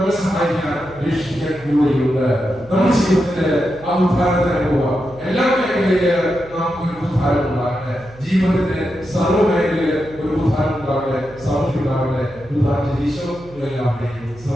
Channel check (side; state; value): right; noise; hum, 21 dB below the sound